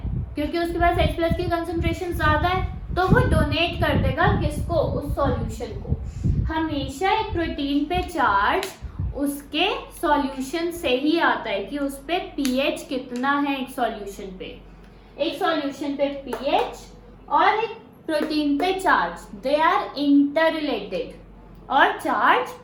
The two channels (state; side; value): identical; both; correlation 1.00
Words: क्योंकि उसके पास H+ की कंसंट्रेशन ज्यादा है, तो वो डोनेट कर देगा किसको? उस सॉल्यूशन को। हमेशा एक प्रोटीन पे चार्ज उसके सॉल्यूशन से ही आता है कि उस पे pH कितना है एक सॉल्यूशन पे। एक सॉल्यूशन पे pH और एक प्रोटीन पे charge, they are inter related, और चार्ज